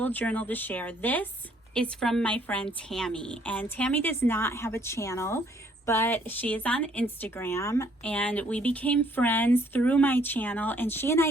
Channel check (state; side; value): normal; both; correlation 0.64